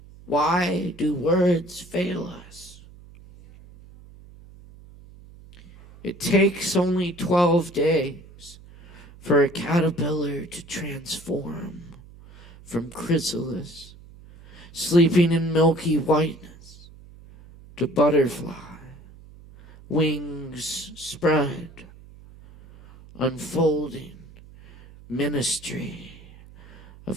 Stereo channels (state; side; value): noise; right; hum, 21 dB below the sound